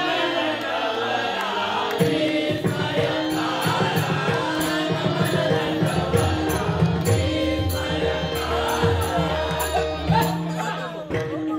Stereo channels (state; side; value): identical; both; correlation 1.00